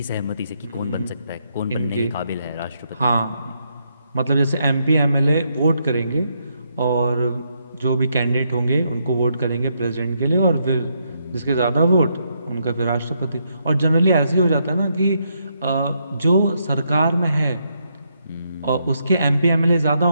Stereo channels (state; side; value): inverted; both; correlation -0.77